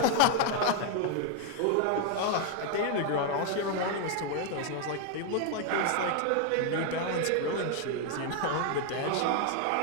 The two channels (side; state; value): both; different; correlation 0.00